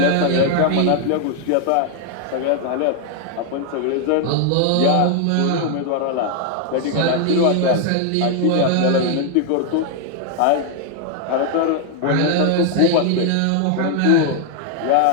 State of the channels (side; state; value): both; different; correlation 0.00